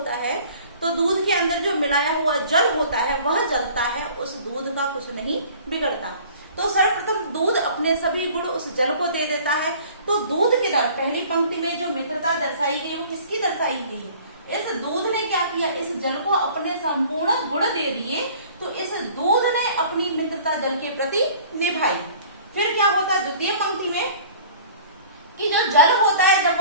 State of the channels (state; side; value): inverted; both; correlation -0.48